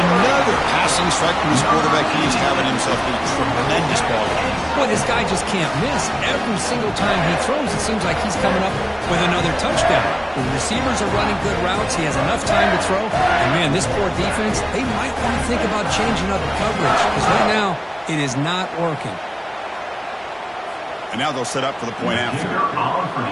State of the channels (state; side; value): identical; both; correlation 1.00